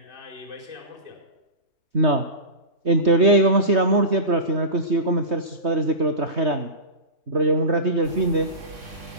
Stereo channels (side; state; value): left; late; 3.2 ms